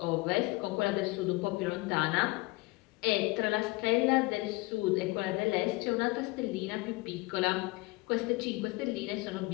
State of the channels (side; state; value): right; quieter; 23.4 dB